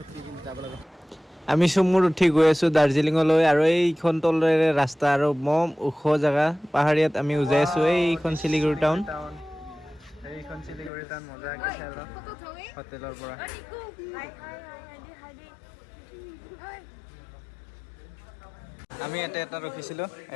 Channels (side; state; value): right; drops out; at 10.9 s